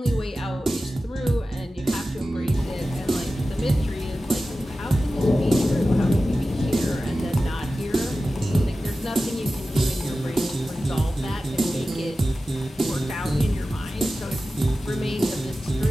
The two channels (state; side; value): normal; both; correlation 0.94